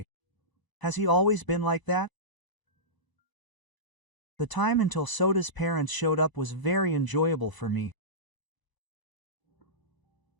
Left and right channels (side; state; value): right; late; 1.0 ms